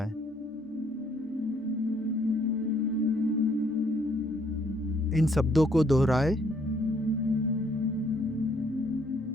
इन शब्दों को दोहराएं।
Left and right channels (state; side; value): normal; both; correlation 0.67